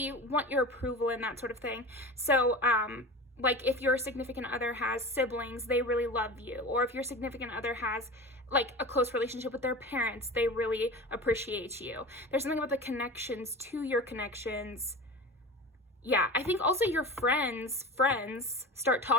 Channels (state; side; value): normal; both; correlation 0.32